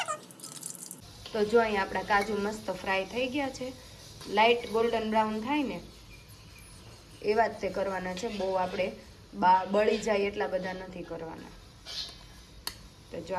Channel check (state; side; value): identical; both; correlation 1.00